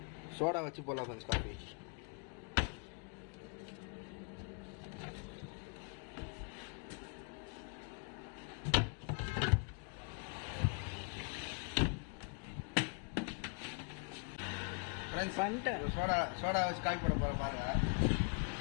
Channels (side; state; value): right; quieter; 38.2 dB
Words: சோடா வச்சு போடலாம் ஃப்ரெண்ட்ஸ் காஃபி. பண்ணிட்டேன். சோடா வச்சு காஃபி போட போற பாருங்க.